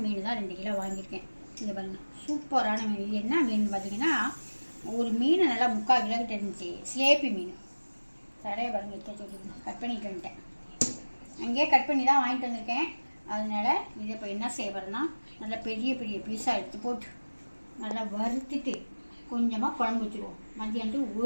மீன் தான் 2 கிலோ வாங்கியிருக்கேன். இதை பாருங்கள், சூப்பரான மீன். இது என்ன மீன் பார்த்தீங்கன்னா, ஒரு மீன் நல்லா 3/4 கிலோக்கிட்ட இருந்துச்சு. சிலேப்பி மீன். தடையை பாருங்கள், எடுத்து சொல்லி கட் பண்ணிட்டு வந்துட்டேன். அங்கேயே கட் பண்ணி தான் வாங்கிட்டு வந்திருக்கேன். அதனால் இதை இப்போ என்ன செய்யப்படுறேன்னா, நல்லா பெரிய பெரிய பீஸாக எடுத்து போட்டு நல்லா வறுத்துட்டு கொஞ்சமாக குழம்பு வச்சுருவோம். மதியானத்துக்கு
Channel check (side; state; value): both; inverted; correlation -1.00